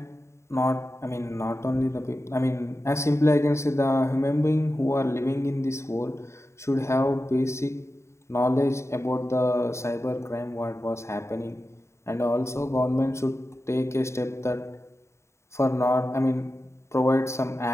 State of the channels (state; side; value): late; right; 0.13 ms